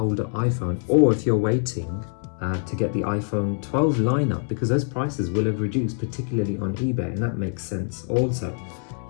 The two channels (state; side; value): silent; right; 55 dB below the other